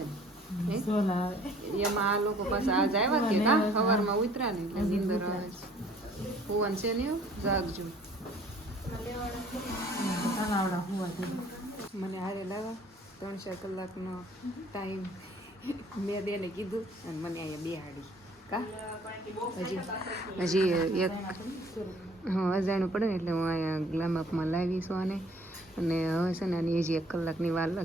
ને એમાં. આ લોકો પાસે આજ આવ્યા કે કા સવારમાં ઉતર્યા ને એટલે નીંદર આવે છે. ભુવન છે ને જાગજો. મને હારે લાવા 3-4 કલાકનો ટાઈમ મેં બેને કીધું અને મને અહીંયા બેહાડી કા. હજી એક અજાણું પડે ને એટલે હું અહીંયા ગ્લામઅપમાં લાવીશું આને. અને હવે છે ને આની હજી 1 કલાકની વાર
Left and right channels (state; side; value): normal; both; correlation 0.56